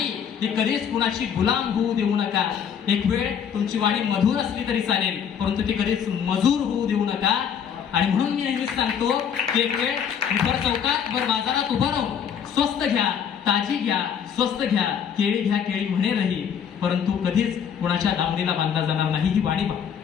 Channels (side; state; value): right; quieter; 7.9 dB